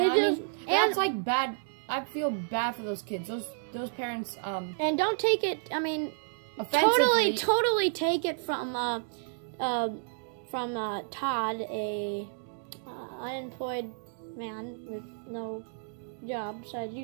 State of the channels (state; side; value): silent; left; digital silence